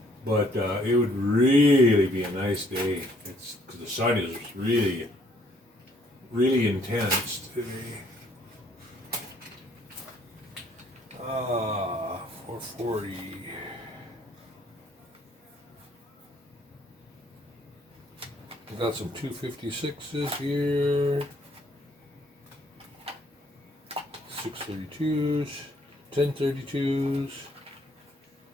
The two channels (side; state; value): both; normal; correlation 0.64